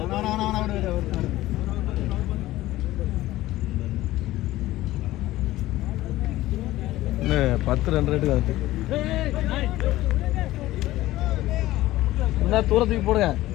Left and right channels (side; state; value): right; quieter; 16.3 dB